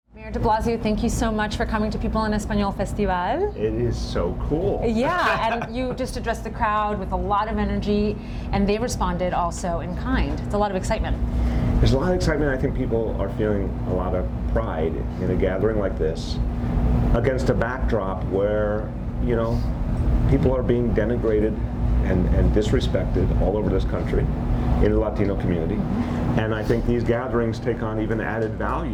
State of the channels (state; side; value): identical; both; correlation 1.00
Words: Mayor De Blasio, thank you so much for coming to People en Español Festival. It is so cool. Yeah, and you just addressed the crowd with a lot of energy, and they responded also in kind. It's a lot of excitement. There's a lot of excitement. I think people are feeling a lot of pride in a gathering like this against a backdrop where, you know, people are being denigrated and disrespected all over this country in the Latino community. And I think these gatherings take on even added